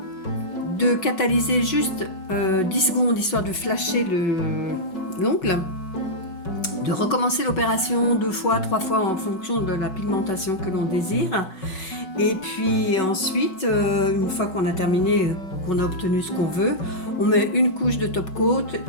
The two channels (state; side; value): late; right; 5.4 ms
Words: de catalyser juste 10 secondes histoire de flasher l'ongle, de recommencer l'opération 2 fois, 3 fois en fonction de la pigmentation que l'on désire. Et puis ensuite, une fois qu'on a terminé, qu'on a obtenu ce qu'on veut, on met une couche de top coat